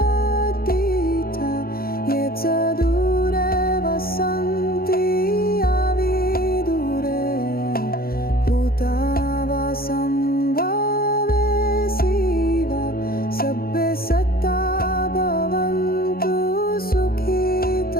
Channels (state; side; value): late; right; 0.44 ms